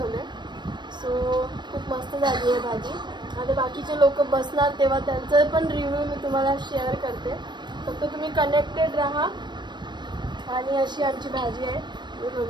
सो खूप मस्त झाली आहे भाजी. आता बाकीचे लोक बसणार तेव्हा त्यांचं पण रिव्ह्यू मी तुम्हाला शेअर करते. फक्त तुम्ही कनेक्टेड राहा. आणि अशी आमची भाजी आहे, तुम्ही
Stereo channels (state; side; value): late; left; 0.22 ms